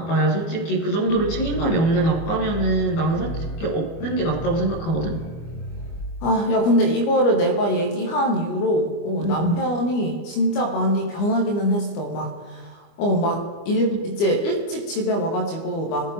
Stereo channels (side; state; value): right; late; 25 ms